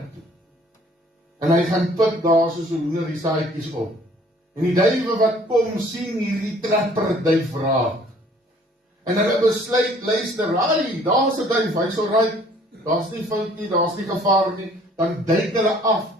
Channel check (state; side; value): normal; both; correlation 0.56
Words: toe. En hy gaan pik daar soos 'n hoender die saadjies op. En die duiwe wat kom, sien hierdie trapper duif raak. En hulle besluit, luister, daar's 'n duif, hy's alright, daar's nie fout nie, daar's nie gevaar nie. Dan duik hulle af